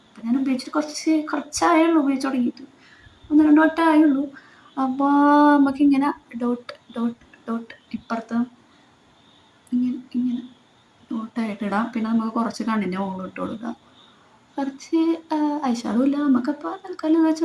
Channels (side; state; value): both; identical; correlation 1.00